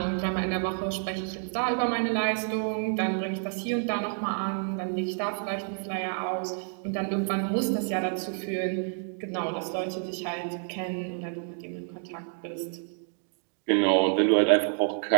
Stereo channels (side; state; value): left; silent; 55 dB below the other